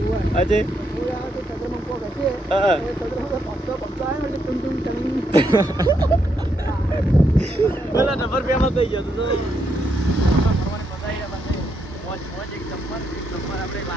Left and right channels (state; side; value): normal; both; correlation 0.78